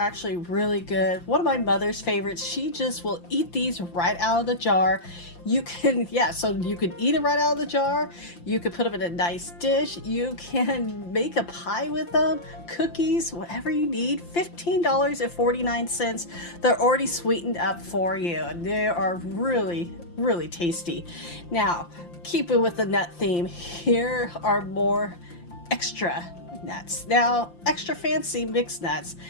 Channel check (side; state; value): right; late; 5.8 ms